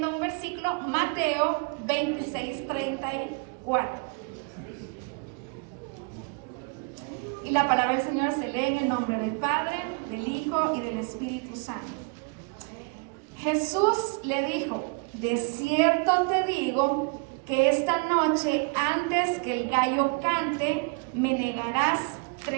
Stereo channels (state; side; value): quieter; left; 34.4 dB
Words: un versículo, Mateo 26, 34. Y la palabra del Señor se lee en el nombre del Padre, del Hijo y del Espíritu Santo. Jesús le dijo: de cierto te digo que esta noche, antes que el gallo cante, me negarás